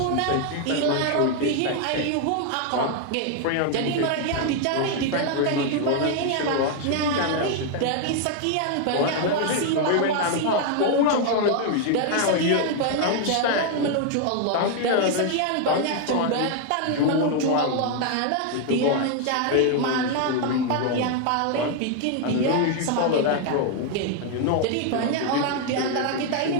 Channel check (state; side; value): different; both; correlation 0.00